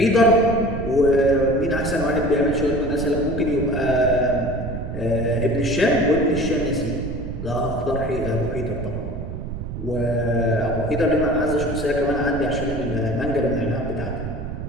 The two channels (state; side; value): noise; right; rumble, 7 dB below the sound